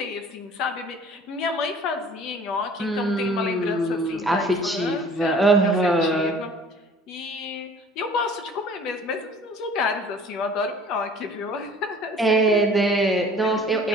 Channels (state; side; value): normal; both; correlation 0.50